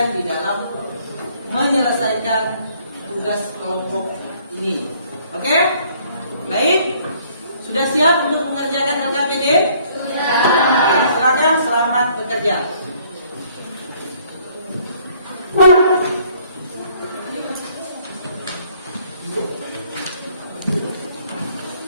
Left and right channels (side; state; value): both; inverted; correlation -0.62